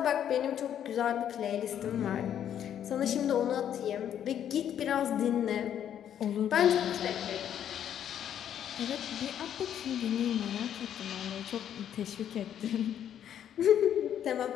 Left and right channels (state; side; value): quieter; right; 9.8 dB